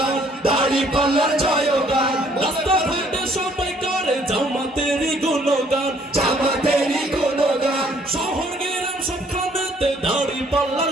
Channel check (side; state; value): both; normal; correlation 0.62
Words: দাড়ি পাল্লার জয়গান রাস্তাঘাটে সবাই করে জামাতেরই গুণগান জামাতেরই গুণগান শহর গ্রাম সবখানেতে দাড়ি পাল্লার